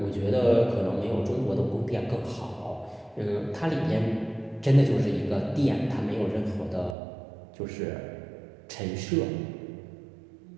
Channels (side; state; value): left; drops out; at 7.0 s